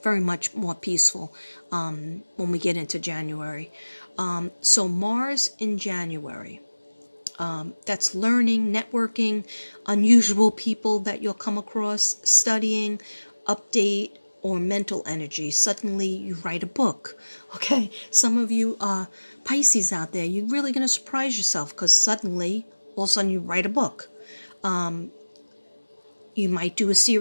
very much more peaceful when we get into January. So Mars in January. That's learning, networking, unusual people that you'll come across, studying, update, or mental energy. Suddenly you write a book. Okay, some of you Pisces out there, you're really going to surprise yourself because suddenly, all of a sudden you write a book. You might do a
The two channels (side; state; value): both; inverted; correlation -1.00